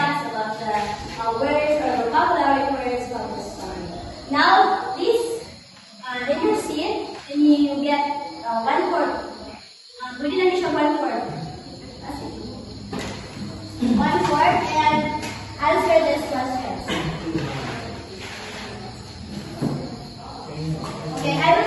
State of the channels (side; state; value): both; identical; correlation 1.00